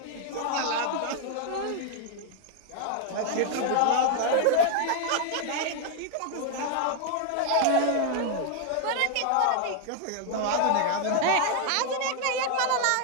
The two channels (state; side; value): different; both; correlation 0.01